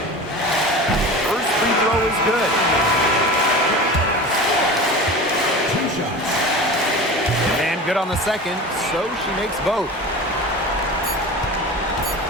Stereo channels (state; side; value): normal; both; correlation 0.33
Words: First free throw is good. 2 shots. And good on the second, so she makes both.